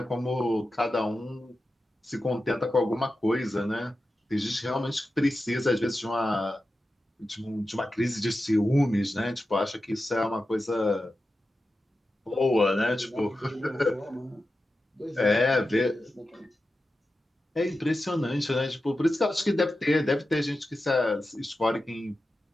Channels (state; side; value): normal; both; correlation 0.92